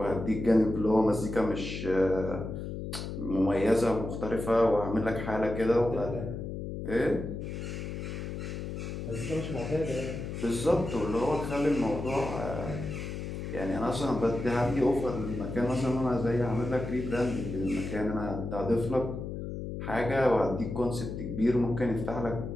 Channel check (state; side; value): noise; left; hum, 6 dB below the sound